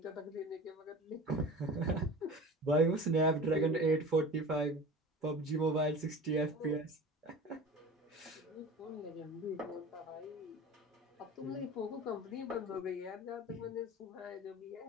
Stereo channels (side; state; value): both; normal; correlation 0.36